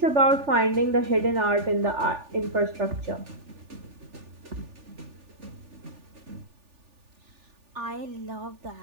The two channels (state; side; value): late; left; 3.4 ms